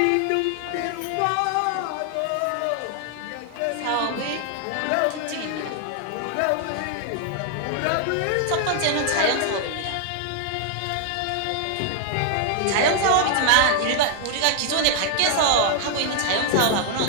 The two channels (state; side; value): different; both; correlation 0.00